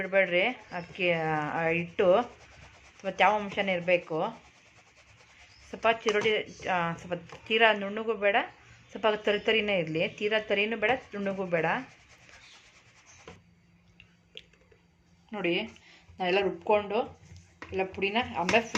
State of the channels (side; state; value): both; identical; correlation 1.00